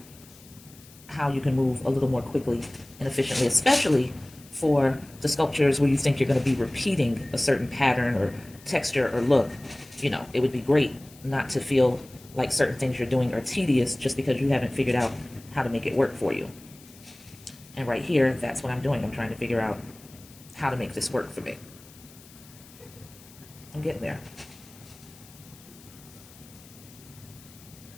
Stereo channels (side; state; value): left; noise; hiss, 23 dB below the sound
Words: how you can move a little more quickly and efficiently, especially for the sculptures where you think you're going to be repeating a certain pattern or texture or look. You know, it would be great not to feel like certain things you're doing are tedious just because you haven't figured out how to make it work for you. And right here, that's what I'm doing. I'm trying to figure out how to make this work for me. I'm getting there.